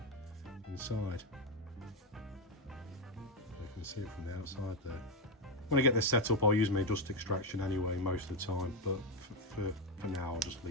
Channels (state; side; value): normal; both; correlation 0.08